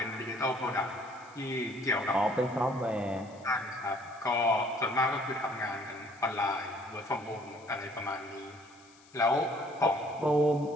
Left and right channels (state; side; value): noise; left; hiss, 27 dB below the sound